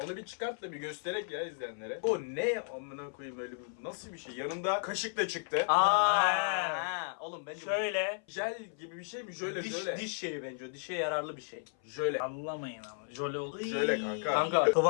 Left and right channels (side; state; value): right; silent; 55 dB below the other